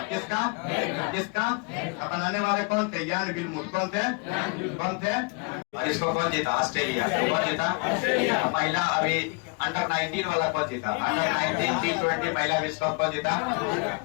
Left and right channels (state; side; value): quieter; right; 33.5 dB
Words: किसका? बनाने वाले कौन थे? यान विल्मुथ। कौन थे? और इसको कौन जीता? ऑस्ट्रेलिया। कौन जीता? महिला अभी अंडर 19 वाला कौन जीता? अंडर 19 T20 महिला विश्व कप कौन जीता?